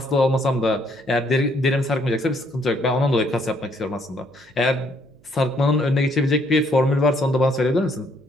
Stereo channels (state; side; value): noise; right; hum, 30 dB below the sound